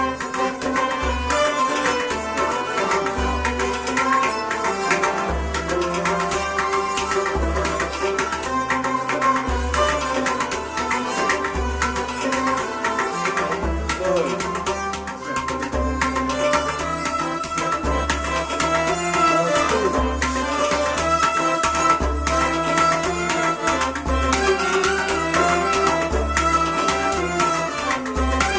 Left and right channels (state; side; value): identical; both; correlation 1.00